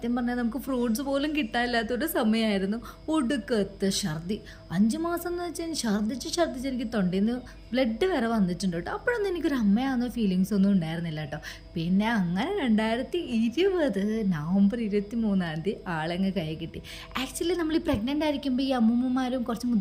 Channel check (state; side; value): identical; both; correlation 1.00